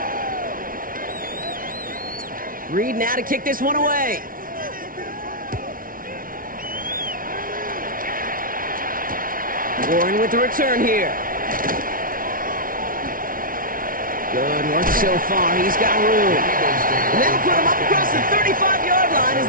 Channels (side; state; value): left; late; 0.41 ms